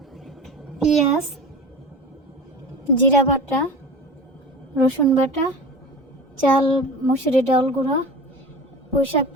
পেঁয়াজ, জিরা বাটা, রসুন বাটা, চাল মুসুরি ডাল গুঁড়া, পুঁই শাক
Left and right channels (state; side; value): normal; both; correlation 0.33